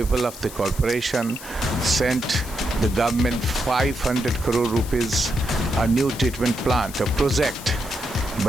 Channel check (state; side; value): noise; left; hiss, 14 dB below the sound